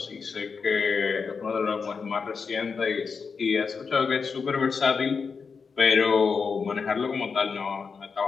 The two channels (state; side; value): quieter; right; 5.4 dB